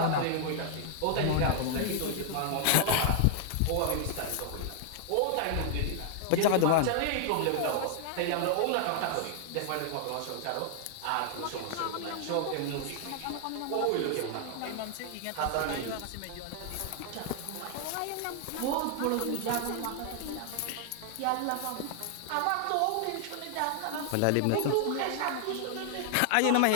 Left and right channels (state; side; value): different; both; correlation 0.00